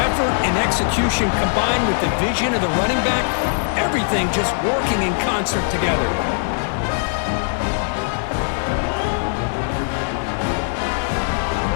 and execution combined with the vision of the running back, everything just working in concert together.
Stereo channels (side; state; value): right; silent; digital silence